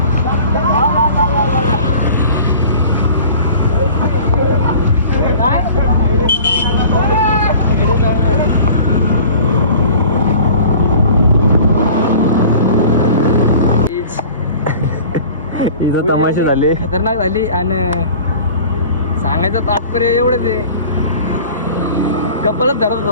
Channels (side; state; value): both; inverted; correlation -0.44